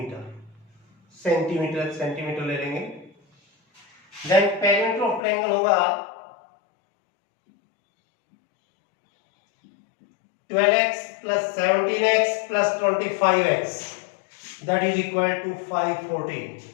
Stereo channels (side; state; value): right; drops out; at 5.2 s